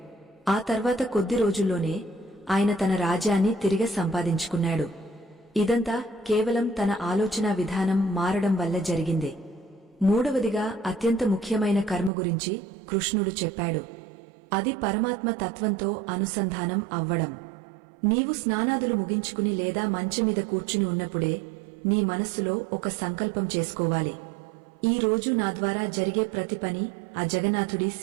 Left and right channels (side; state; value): left; drops out; at 12.1 s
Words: ఆ తర్వాత కొద్ది రోజుల్లోనే ఆయన తన రాజ్యాన్ని తిరిగి సంపాదించుకున్నాడు. ఇదంతా కేవలం తన ఆలోచనా విధానం మారడం వల్ల జరిగింది. మూడవదిగా అత్యంత ముఖ్యమైన కర్మ గురించి కృష్ణుడు చెప్పాడు. అది పరమాత్మ తత్వంతో అనుసంధానం అవ్వడం. నీవు స్నానాదులు ముగించుకుని లేదా మంచం మీద కూర్చుని ఉన్నప్పుడే నీ మనస్సులో ఒక సంకల్పం చేసుకోవాలి. ఈ రోజు నా ద్వారా జరిగే ప్రతి పని ఆ జగన్నాథుడి